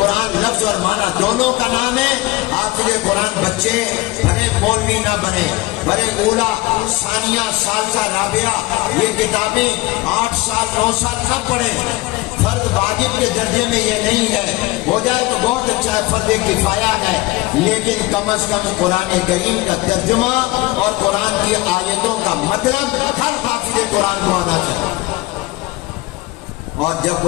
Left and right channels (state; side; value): quieter; right; 20.3 dB